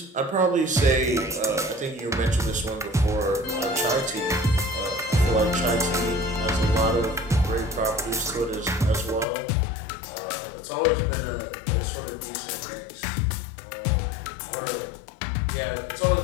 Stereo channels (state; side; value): drops out; right; at 9.2 s